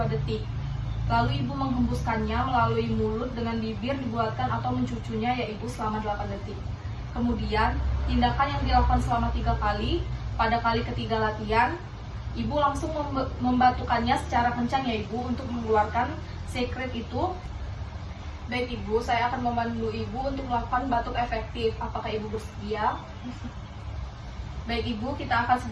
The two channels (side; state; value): both; identical; correlation 1.00